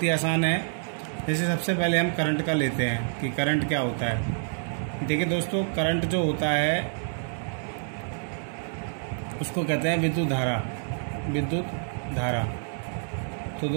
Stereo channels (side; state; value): left; silent; digital silence